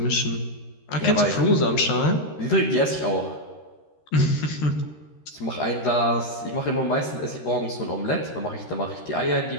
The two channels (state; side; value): late; right; 13 ms